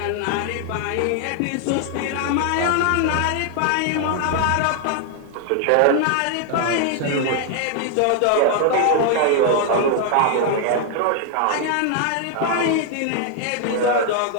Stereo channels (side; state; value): both; different; correlation 0.00